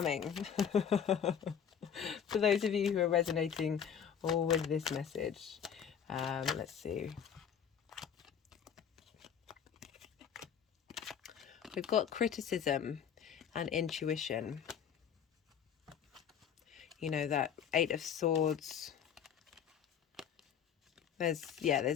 For those of you who are resonating with this message. Let's see. We've got criticism and intuition. You know, that 8 of Swords. There's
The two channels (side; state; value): right; quieter; 8.1 dB